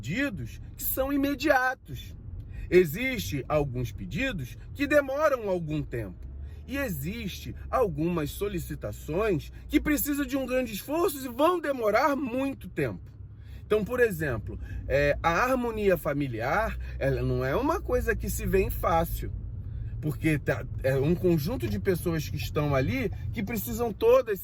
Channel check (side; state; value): both; identical; correlation 1.00